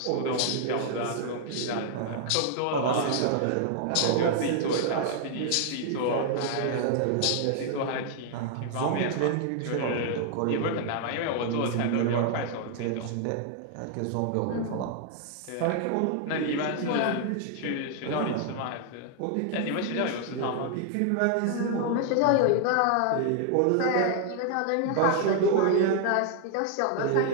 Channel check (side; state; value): both; different; correlation 0.00